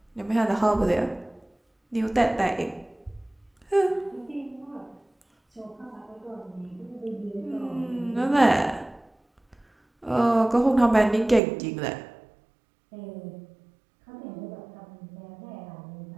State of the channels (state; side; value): drops out; left; at 11.4 s